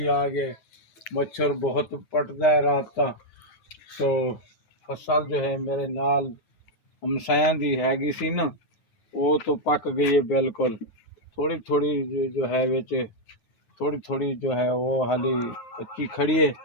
आ गए, मच्छर बहुत पटता है रात का। तो फसल जो है मेरे नाल हमसायां दी हैगी सी ना, वो तो पक गई है बिल्कुल। थोड़ी थोड़ी जो है विच थोड़ी थोड़ी जो है वो हाली कच्ची खड़ी है,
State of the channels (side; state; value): right; late; 9.2 ms